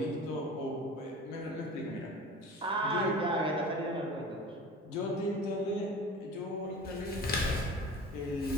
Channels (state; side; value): normal; both; correlation 0.38